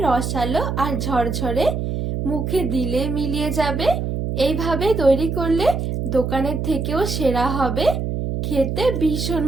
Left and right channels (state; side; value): noise; right; hum, 2 dB below the sound